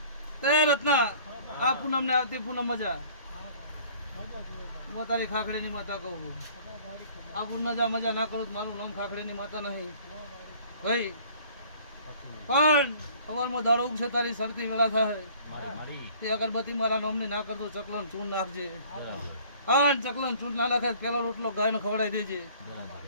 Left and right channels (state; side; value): inverted; both; correlation -0.52